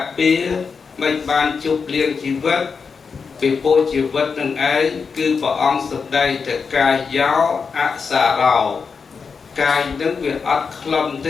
ពារមិនបានជប់លៀងជីវិតពីពោជីវិតនឹងឯងគឺព្រះអង្គសម្ដែងតែកាយយោអសារោកាយនឹងវាអត់ខ្លំទ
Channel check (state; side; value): quieter; right; 5.4 dB